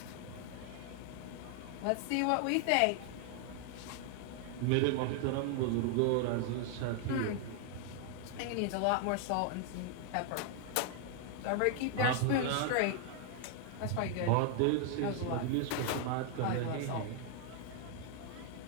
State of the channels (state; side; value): different; both; correlation 0.00